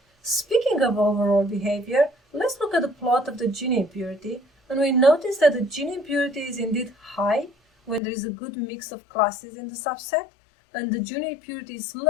Speaking of overall behavior, let's look at the plot of the Gini impurity, and we notice that the Gini impurity is indeed high when there is a good mix of classes in the subset, and the Gini impurity is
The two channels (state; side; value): drops out; right; at 8.0 s